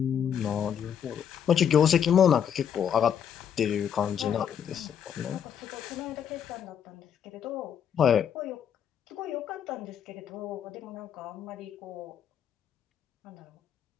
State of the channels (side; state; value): right; quieter; 8.5 dB